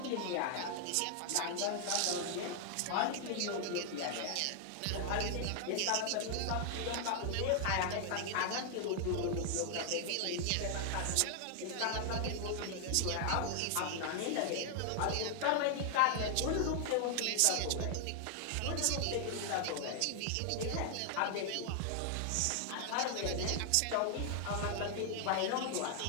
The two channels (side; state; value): both; different; correlation 0.00